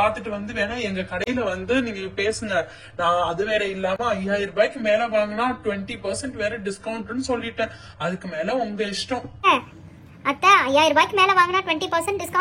வேணா எங்க கடையில நீங்க பேசுங்க. நான் அது வேற இல்லாம 5000 ரூபாய்க்கு மேல வாங்கினா 20% வேற டிஸ்கவுண்ட்னு சொல்லிட்டேன். அதுக்கு மேல உங்க இஷ்டம். அத்தை 5000 ரூபாய்க்கு மேல வாங்கினா 20%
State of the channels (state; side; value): identical; both; correlation 1.00